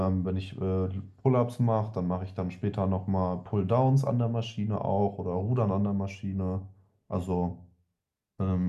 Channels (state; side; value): identical; both; correlation 1.00